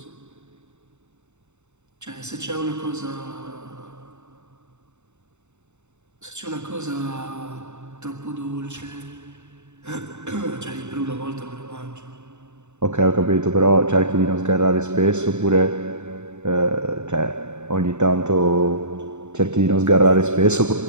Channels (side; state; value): left; late; 0.83 ms